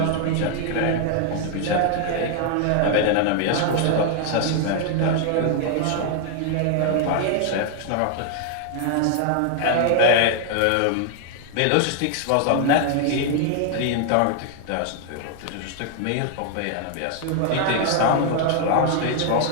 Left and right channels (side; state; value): both; different; correlation 0.00